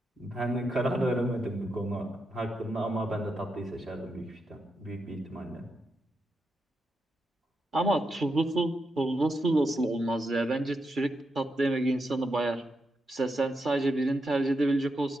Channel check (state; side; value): normal; both; correlation 0.85